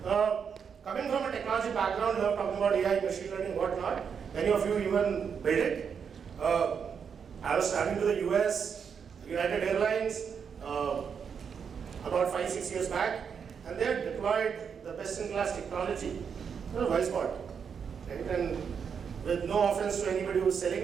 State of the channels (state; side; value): quieter; left; 6.8 dB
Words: coming from a technology background, you are talking about AI, machine learning, whatnot. Many of you even build it. I was traveling to the US, United Airlines, about 5-6 years back, and they had deployed the best-in-class technology, voice bot, right? And with no offense to anybody who's selling